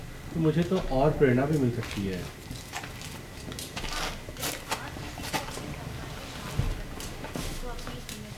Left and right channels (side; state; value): both; identical; correlation 1.00